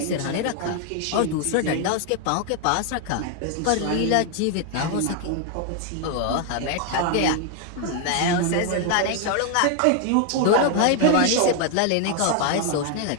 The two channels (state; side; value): different; both; correlation 0.00